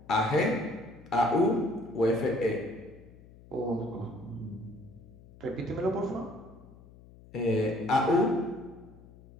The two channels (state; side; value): noise; left; hum, 22 dB below the sound